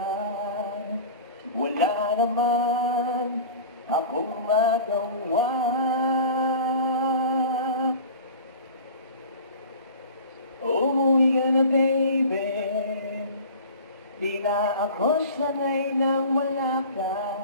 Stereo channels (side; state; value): both; inverted; correlation -0.39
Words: Wala naman akong magawa. Umuwi ka na, baby. Di na ako sanay nang wala